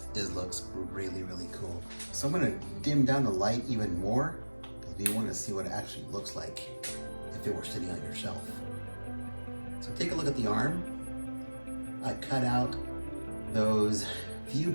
looks really, really cool. So I'm gonna dim down the light even more because we want to see what it actually looks like if it were sitting on your shelf. So take a look at the arm. I cut out those view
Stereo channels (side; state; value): both; inverted; correlation -1.00